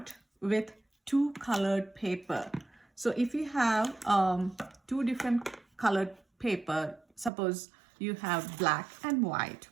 with two colored paper. So if you have two different colored paper, suppose you have black and white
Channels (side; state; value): left; drops out; at 7.3 s